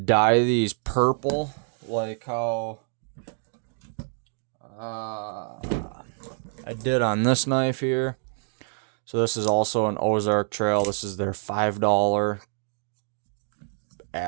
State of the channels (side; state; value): left; silent; digital silence